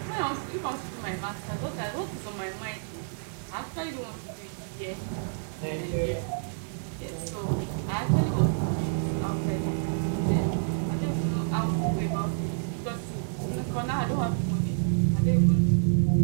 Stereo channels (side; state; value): left; silent; digital silence